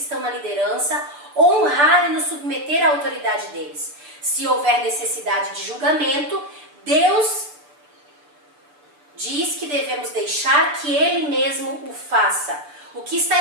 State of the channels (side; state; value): left; late; 6.9 ms